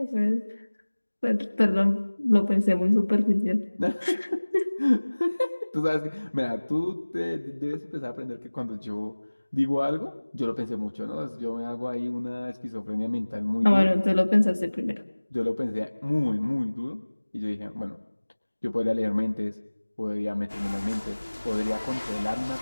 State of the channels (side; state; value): both; inverted; correlation -1.00